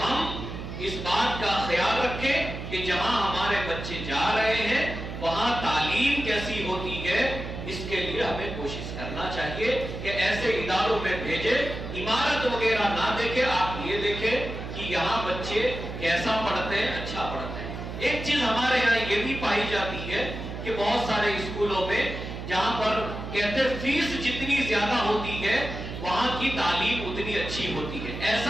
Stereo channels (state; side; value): noise; right; hum, 8 dB below the sound